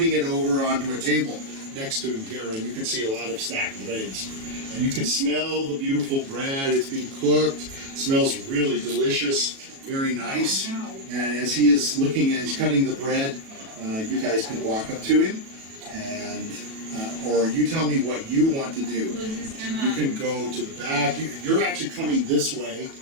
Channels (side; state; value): left; late; 37 ms